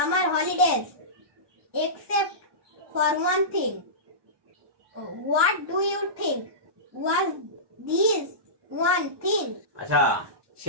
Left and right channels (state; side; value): late; left; 1.2 ms